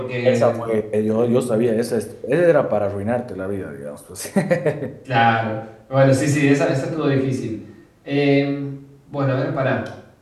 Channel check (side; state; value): both; identical; correlation 1.00